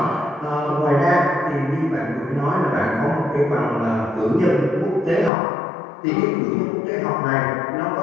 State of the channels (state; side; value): drops out; right; at 5.3 s